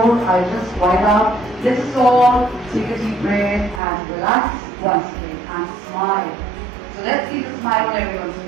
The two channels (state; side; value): drops out; left; at 3.8 s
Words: I just wind up, let us all take a deep breath and relax once again and smile. So let's see the smile on everyone's